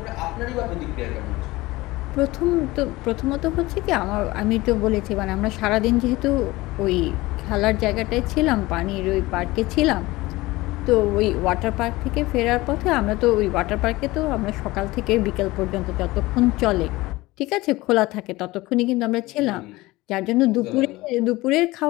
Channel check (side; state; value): right; quieter; 19.9 dB